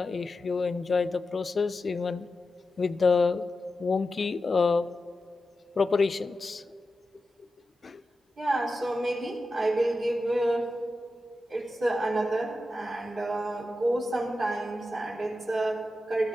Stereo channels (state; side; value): normal; both; correlation 0.91